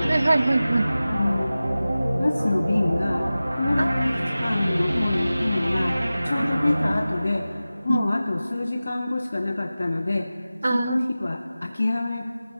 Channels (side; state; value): both; inverted; correlation -0.96